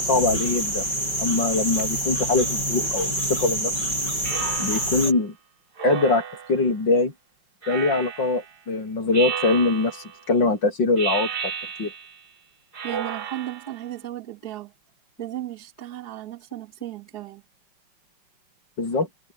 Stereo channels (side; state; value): right; late; 5.3 ms